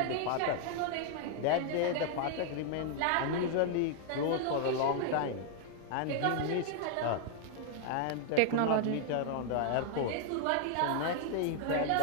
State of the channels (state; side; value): different; both; correlation 0.00